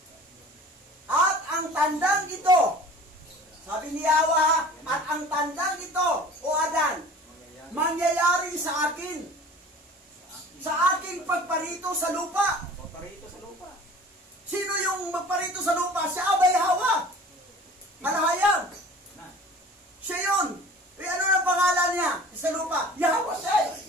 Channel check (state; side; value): normal; both; correlation 0.44